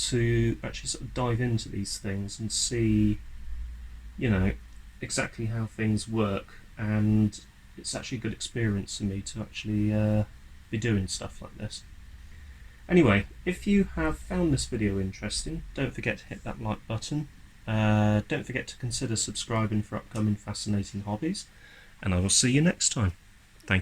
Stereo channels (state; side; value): identical; both; correlation 1.00